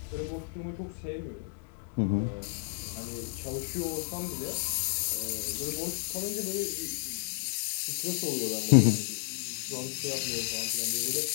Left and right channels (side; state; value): right; silent; digital silence